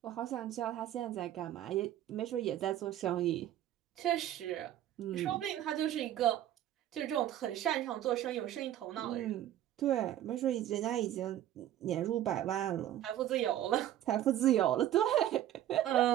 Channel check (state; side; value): quieter; left; 12.3 dB